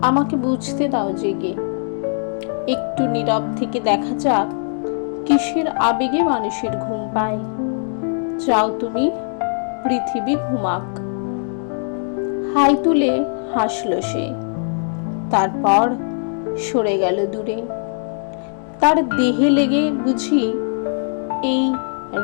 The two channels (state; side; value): silent; right; 60 dB below the other